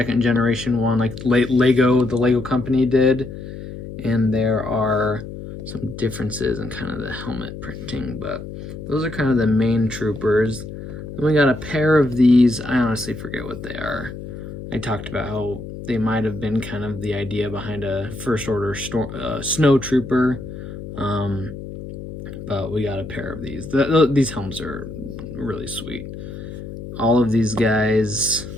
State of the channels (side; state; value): left; noise; hum, 10 dB below the sound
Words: generation one, like the Lego company did. And there are some differences in kind of the helmet printing, but those are kind of the main troopers. Then we got a pair of these, I honestly forget what they are. I talked about how they might have been kind of the idea behind a first order snow trooper, but we got a pair of these. These helms are really sweet. All of these guys,